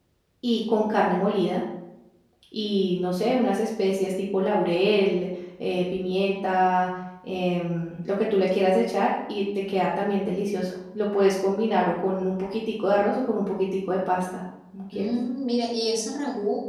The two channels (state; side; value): identical; both; correlation 1.00